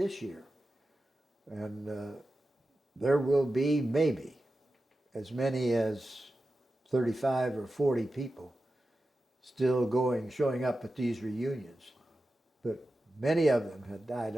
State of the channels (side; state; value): both; normal; correlation 0.92